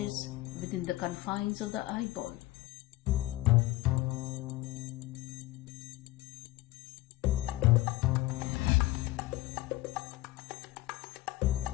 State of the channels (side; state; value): right; quieter; 18.2 dB